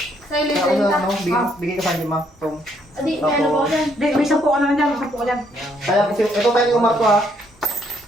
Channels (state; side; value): normal; both; correlation 0.70